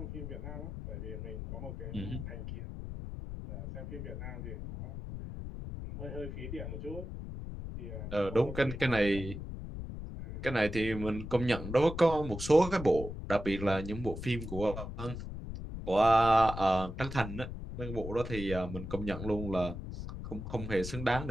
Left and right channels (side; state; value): left; noise; rumble, 8 dB below the sound